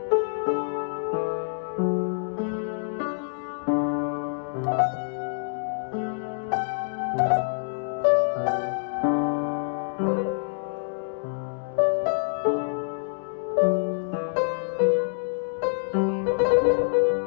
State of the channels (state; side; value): silent; right; digital silence